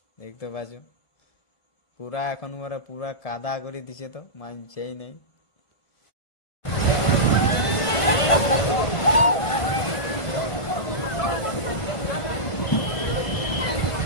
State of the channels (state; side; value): late; right; 1.5 ms